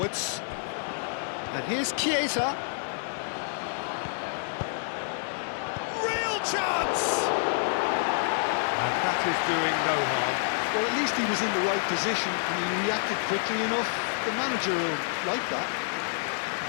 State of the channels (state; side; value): silent; right; digital silence